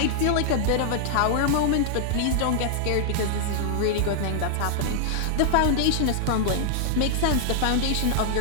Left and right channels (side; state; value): both; different; correlation -0.01